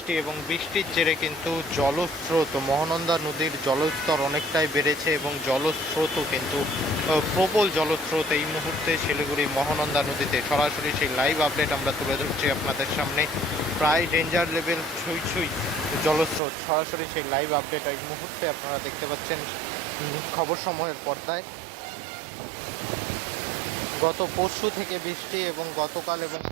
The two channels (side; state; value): left; drops out; at 16.4 s